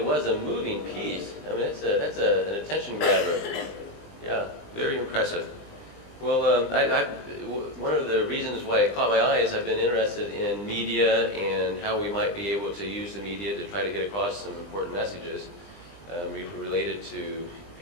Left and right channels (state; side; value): late; right; 20 ms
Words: was a moving piece. I mean, an attention grabber. Yeah, very impressive. Well, one of the reasons why it caught my eye is I've been interested in media and how we might be able to use the media to try to get across some important messages related to